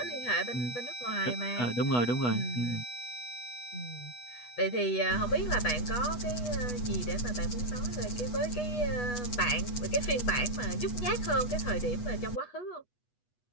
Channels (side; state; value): right; late; 8.2 ms